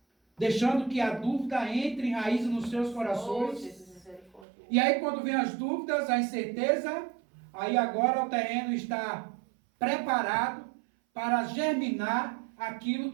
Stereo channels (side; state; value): left; drops out; at 4.5 s